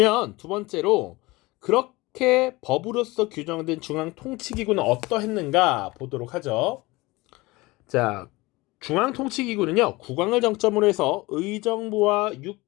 두 번째로 그렇게 법으로서 규정된 중앙통치기구는 어떠했는가 보도록 하죠. 자, 중앙통치기구는요 국왕을 정점으로 해서 의정부와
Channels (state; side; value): quieter; right; 21.9 dB